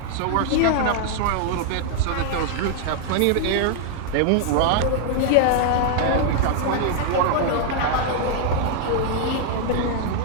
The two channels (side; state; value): both; different; correlation 0.00